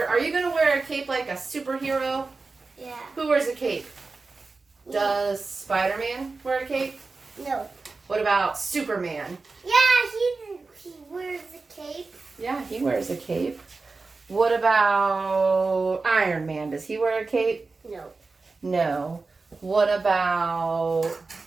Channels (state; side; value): quieter; left; 3.9 dB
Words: Are you going to wear a cape like a superhero? Yeah. Who wears a cape? Does Spider-Man wear a cape? No. What about Superman? Yeah, he wears a cape. Yeah, he wears a cape. What about Iron Man? Does he wear a cape? No. No. What about